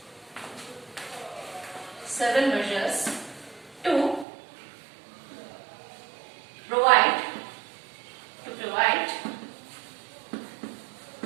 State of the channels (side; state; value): left; drops out; at 4.2 s